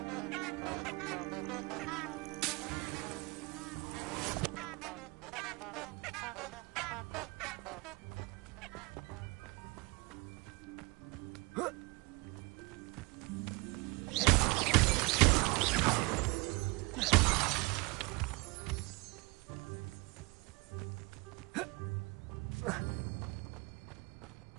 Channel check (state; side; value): quieter; left; 26.4 dB